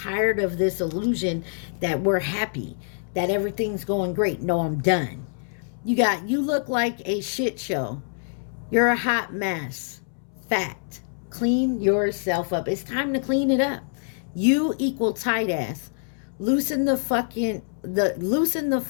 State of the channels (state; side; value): silent; right; 62 dB below the other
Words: of this illusion that we're happy, that everything's going great. No, I'm done. You look like a shit show. You're a hot mess. Fact. Clean yourself up. It's time to clean it up. You equal tight ass. Loosen the fuck